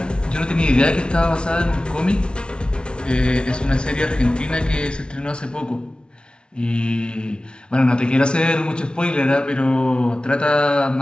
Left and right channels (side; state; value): right; late; 0.056 ms